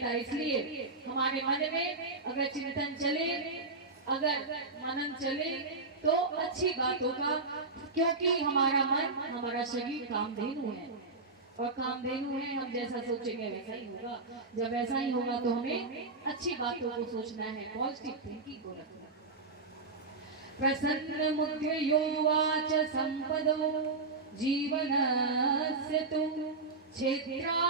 है। इसलिए हमारे मन में अगर चिंतन चले, अगर मनन चले तो अच्छी बातों का, क्योंकि हमारा मन, हमारा शरीर कामधेनु है, और कामधेनु है, हम जैसा सोचेंगे वैसा ही होगा। जब ऐसा ही होगा तो हमें अच्छी बातों को सोचना है, पॉजिटिव थिंकिंग को रखना। प्रसन्न मुद्रयोवाच संपदो जीवनस्य तु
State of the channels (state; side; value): quieter; left; 3.8 dB